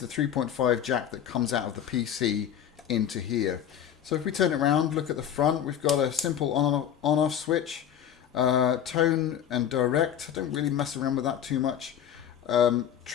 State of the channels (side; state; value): right; quieter; 9.6 dB